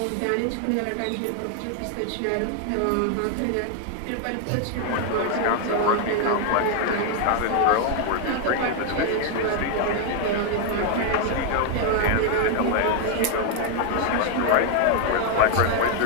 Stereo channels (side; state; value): both; different; correlation 0.00